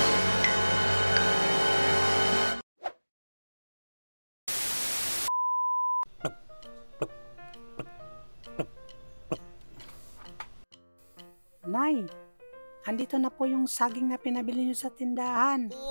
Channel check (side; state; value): both; inverted; correlation -1.00